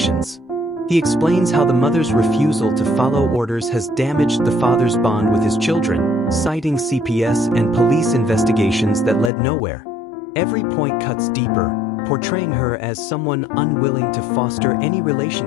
He explains how the mother's refusal to follow orders has damaged the father's bond with his children, citing CPS and police investigations that led nowhere. Every point cuts deeper, portraying her as someone unwilling to foster any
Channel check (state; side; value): drops out; right; at 9.3 s